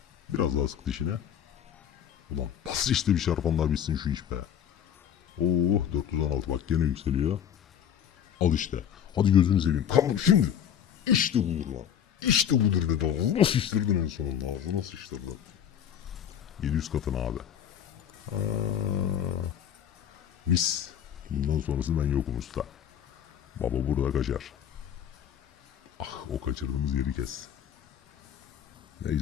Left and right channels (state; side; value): quieter; right; 9.1 dB